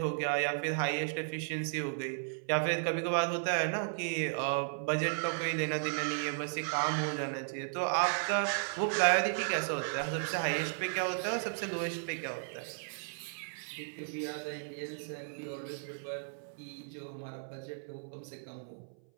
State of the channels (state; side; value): silent; left; 55 dB below the other